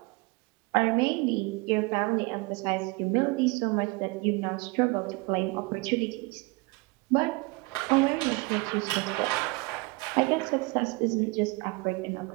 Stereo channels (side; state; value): left; quieter; 26.6 dB